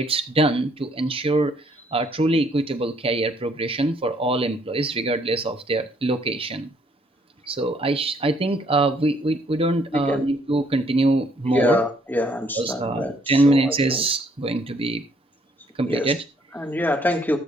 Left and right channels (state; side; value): normal; both; correlation 0.66